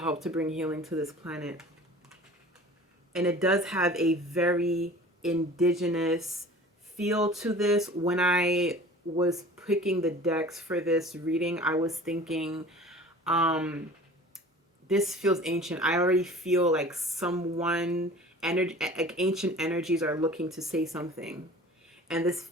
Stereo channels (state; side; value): normal; both; correlation 0.43